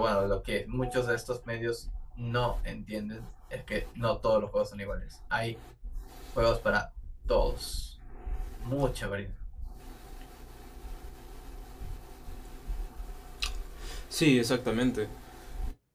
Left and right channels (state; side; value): identical; both; correlation 1.00